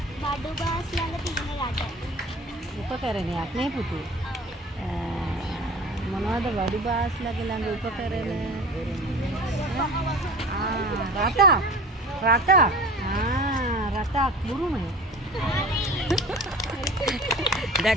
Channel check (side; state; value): both; normal; correlation 0.40